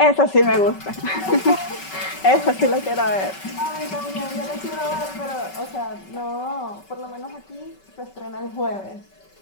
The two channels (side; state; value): right; late; 5.3 ms